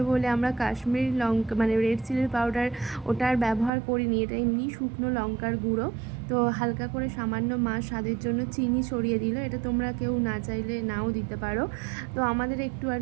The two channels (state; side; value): drops out; left; at 3.7 s